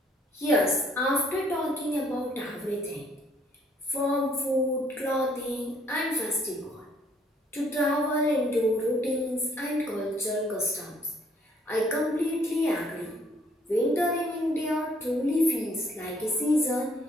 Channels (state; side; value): normal; both; correlation 0.64